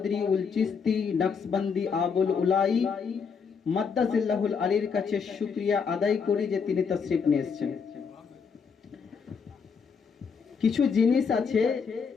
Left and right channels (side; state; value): right; quieter; 5.9 dB